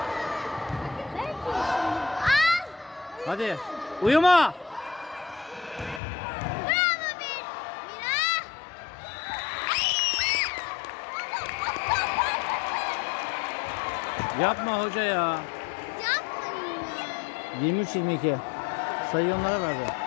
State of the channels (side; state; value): right; drops out; at 6.0 s